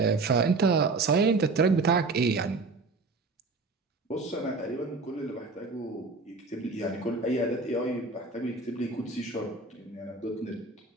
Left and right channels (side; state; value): left; quieter; 3.8 dB